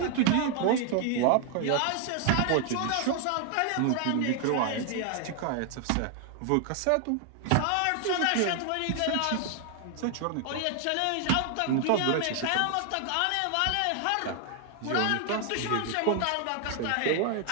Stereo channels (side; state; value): both; different; correlation 0.00